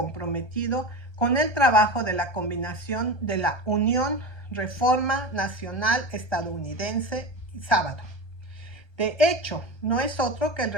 con el trabajo de la combinación de la Unión Reforma Nacional Estadounidense y Sábado. De hecho, no es otro que el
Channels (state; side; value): late; right; 1.3 ms